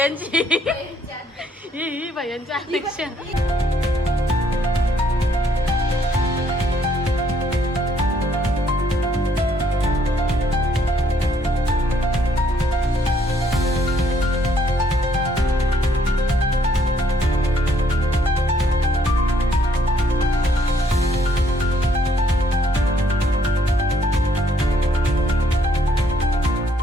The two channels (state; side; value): normal; both; correlation 0.67